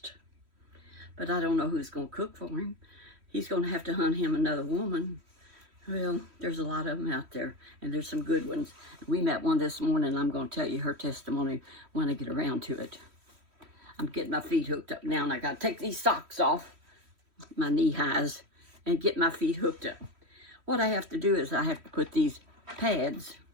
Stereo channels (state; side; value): late; left; 3.1 ms